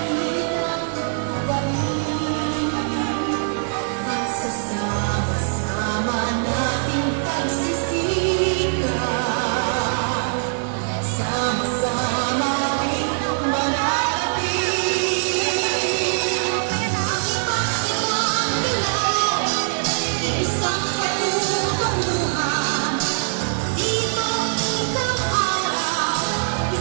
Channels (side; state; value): left; silent; 64 dB below the other